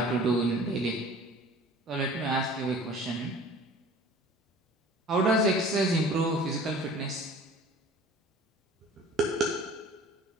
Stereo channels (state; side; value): normal; both; correlation 0.46